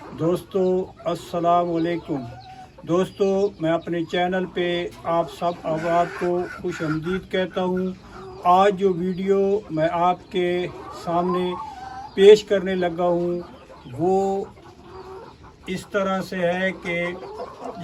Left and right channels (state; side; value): identical; both; correlation 1.00